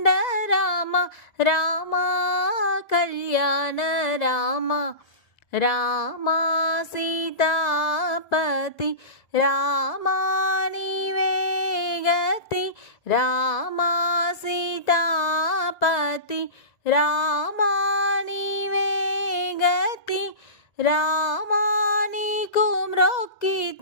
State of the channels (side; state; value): right; late; 1.9 ms